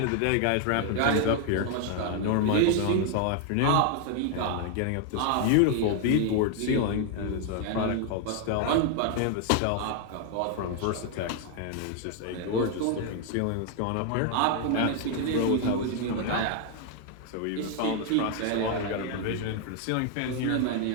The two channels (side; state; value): both; different; correlation 0.00